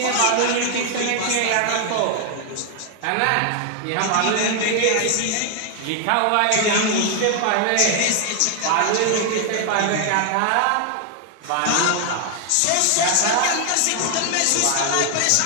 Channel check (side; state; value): both; different; correlation 0.00